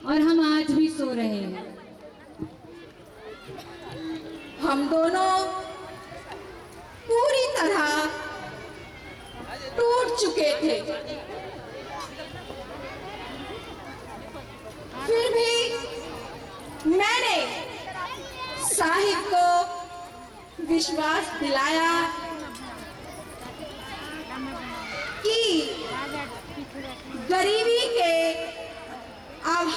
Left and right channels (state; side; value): identical; both; correlation 1.00